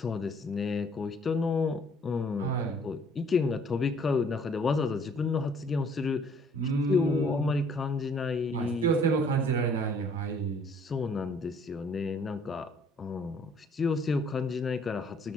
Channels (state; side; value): normal; both; correlation 0.59